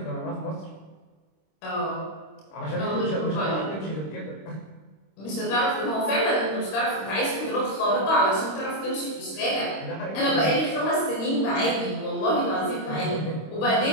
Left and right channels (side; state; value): right; late; 26 ms